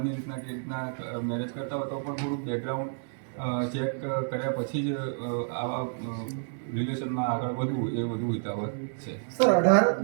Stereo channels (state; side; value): silent; left; digital silence